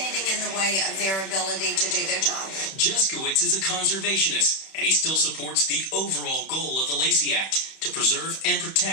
in the way of their ability to do their job. Jeskowitz is a conservationist, and he still supports the overall goal of the Lacey Act to preserve and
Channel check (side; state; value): right; late; 31 ms